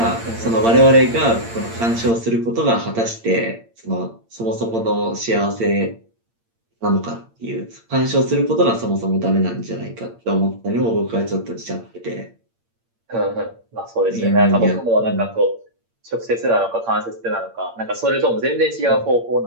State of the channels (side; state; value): left; late; 8.7 ms